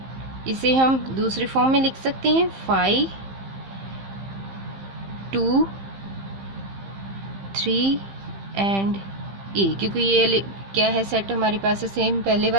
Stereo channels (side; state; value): left; late; 15 ms